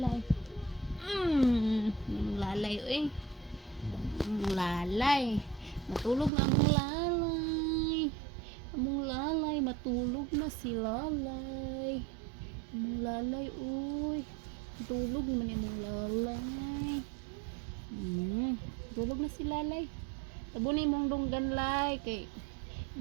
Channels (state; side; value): drops out; left; at 6.3 s